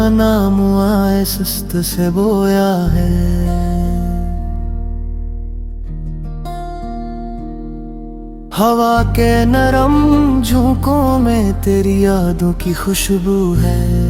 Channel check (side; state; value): both; identical; correlation 1.00